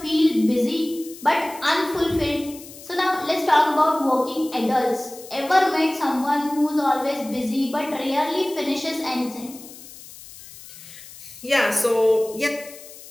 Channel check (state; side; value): noise; left; hiss, 17 dB below the sound